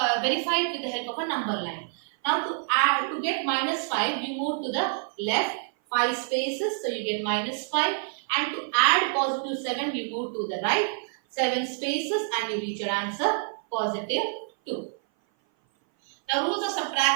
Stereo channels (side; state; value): left; silent; 57 dB below the other